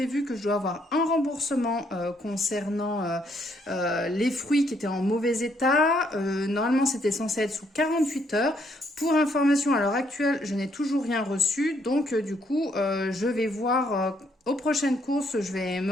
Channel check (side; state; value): both; normal; correlation 0.71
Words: que je dois avoir un remboursement concernant les fruits qui étaient en mauvais état. Normalement c'était censé être sous 48 heures. Pour information, à l'heure actuelle, je n'ai toujours rien reçu. Donc du coup, je vais voir aux prochaines courses, je vais me